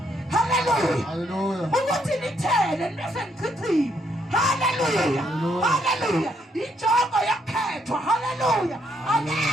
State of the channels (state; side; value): normal; both; correlation 0.73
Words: Hallelujah. Hallelujah. Ukuthi nithele nibese nichithile. Hallelujah. Hallelujah. Injongo yakhethwa. Hallelujah.